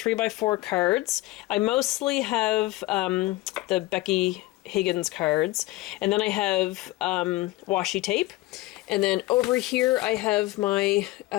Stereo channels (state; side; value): quieter; right; 18.6 dB